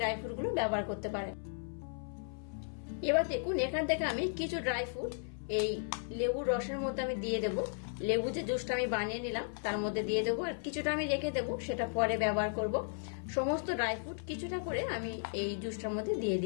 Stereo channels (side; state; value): right; silent; 54 dB below the other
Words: ফ্রুট গুলো ব্যবহার করতে পারেন। এবার দেখুন এখান থেকে আমি কিছু ড্রাই ফ্রুট এই লেবুর রসের মধ্যে আমি দিয়ে দেবো। লেবু যে জুসটা আমি বানিয়ে নিলাম তার মধ্যে দিয়ে দেবো, আর কিছুটা আমি রেখে দেবো, সেটা পরে ব্যবহার করব। সমস্ত ড্রাই ফ্রুট কিছুটা করে আমি এই জুসটার মধ্যে দিয়ে